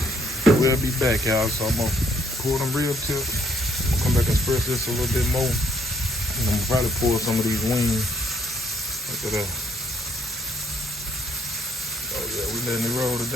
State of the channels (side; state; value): both; normal; correlation 0.67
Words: We'll be back, y'all. So I'm gonna pour them rib tips. I'm gonna come back and spread this a little bit more. And I'm gonna probably pour some of these wings. Look at that. Oh yeah, we letting it roll